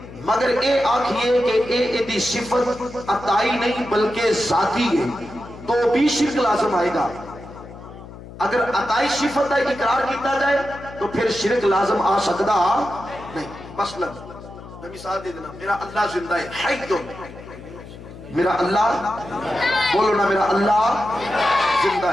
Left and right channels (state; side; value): noise; left; hum, 15 dB below the sound